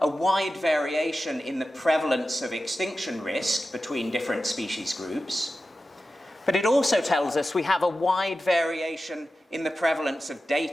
a wide variation in the prevalence of extinction risk between different species groups, but it also tells us we have a wide variation in the prevalence of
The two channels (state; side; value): normal; both; correlation 0.93